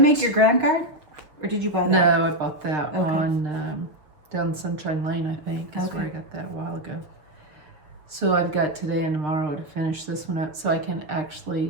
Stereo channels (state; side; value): late; left; 6.7 ms